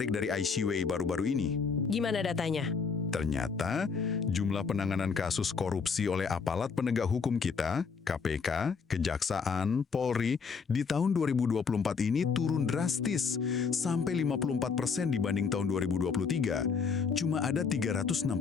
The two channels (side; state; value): right; quieter; 5.5 dB